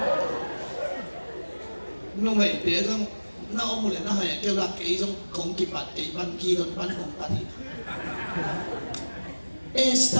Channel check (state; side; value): inverted; both; correlation -1.00